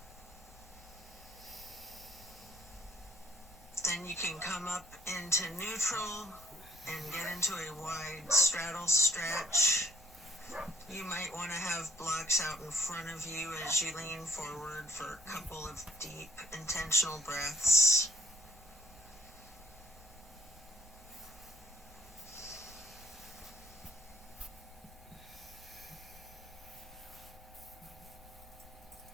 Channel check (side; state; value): both; normal; correlation 0.64